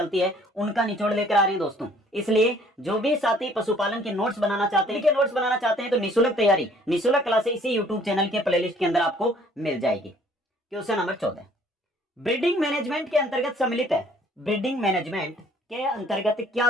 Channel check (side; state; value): both; normal; correlation 0.58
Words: है उनका निचोड़ लेकर आ रहे हैं दोस्तों। इसलिए जो भी साथी पशुपालन के नोट्स बनाना चाहते हैं तो निःशुल्क तैयारी, निःशुल्क क्लासें इसी यूट्यूब चैनल के प्लेलिस्ट के अंदर आपको मिल जाएगी। क्वेश्चन नंबर 14 ब्रीडिंग मैनेजमेंट के अंतर्गत सम्मिलित है। ब्रीडिंग मैनेजमेंट के अंतर्गत